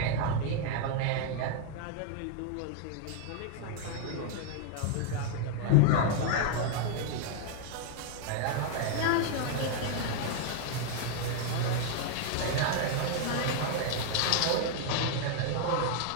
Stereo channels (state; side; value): different; both; correlation 0.00